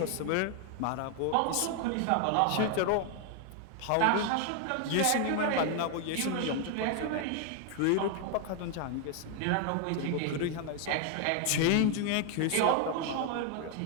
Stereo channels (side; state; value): both; different; correlation 0.01